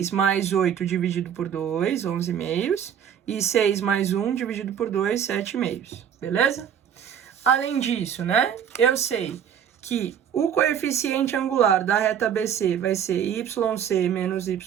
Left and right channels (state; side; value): quieter; left; 8.6 dB